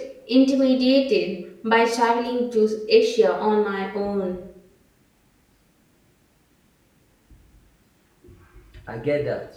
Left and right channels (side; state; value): both; identical; correlation 1.00